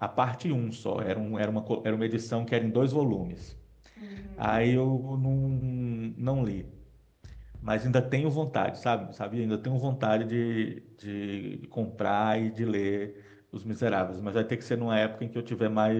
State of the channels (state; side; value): identical; both; correlation 1.00